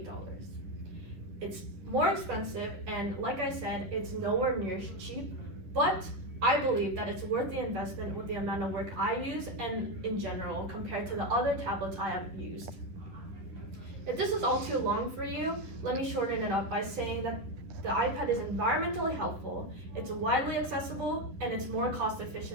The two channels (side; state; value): left; late; 10 ms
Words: It's more expensive, and like I said, it's nowhere near cheap, but I believe that it's worth the investment with the amount of work I use and in general compared to the other tablets I have used. If this is all too long for you, let me shorten it up by saying that the iPad is environmentally helpful, it's widely accessible, and it's more cost